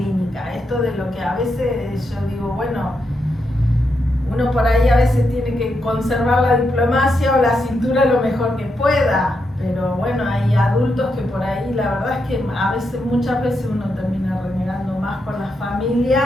Esto de lo que a veces yo digo, bueno, uno por ahí a veces tiene que conservar la diplomacia o la cintura lo mejor que pueda. Pero bueno, hay adultos que por ahí, la verdad es que muchas veces uno termina renegando más con las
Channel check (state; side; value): normal; both; correlation 0.83